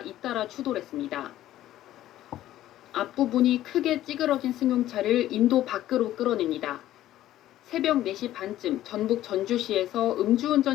잇따라 추돌했습니다. 앞부분이 크게 찌그러진 승용차를 인도 밖으로 끌어냅니다. 새벽 4시 반쯤 전북 전주시에서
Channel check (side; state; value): right; quieter; 13.6 dB